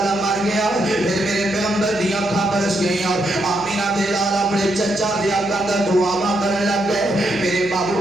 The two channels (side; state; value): left; noise; hum, 22 dB below the sound